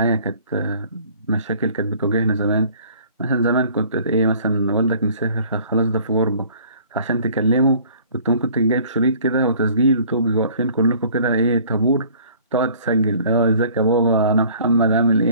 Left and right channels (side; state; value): both; inverted; correlation -0.53